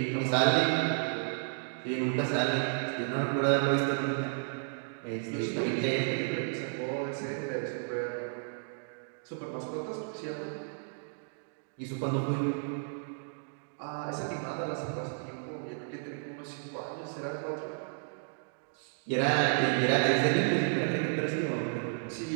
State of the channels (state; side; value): silent; left; digital silence